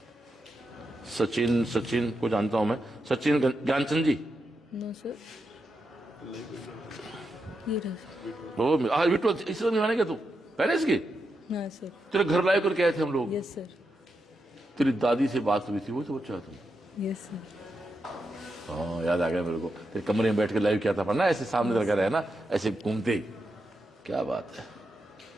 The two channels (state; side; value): normal; both; correlation 0.86